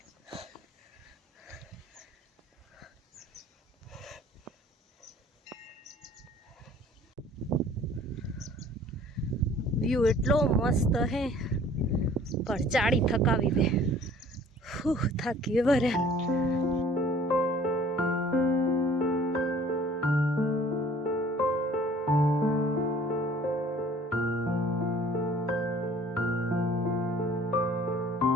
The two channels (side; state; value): both; normal; correlation 0.52